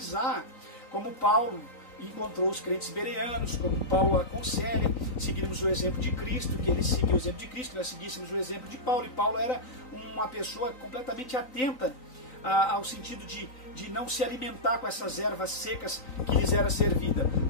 como Paulo encontrou os crentes bereanos, como Paulo aconselha, seguirmos o exemplo de Cristo, que ele seguiu o exemplo de Cristo, que nós seguíssemos o exemplo de Paulo, e Paulo era uma pessoa completamente atenta ao sentido de não se alimentar com essas ervas secas que lhes era servida.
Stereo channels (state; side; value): late; right; 3.9 ms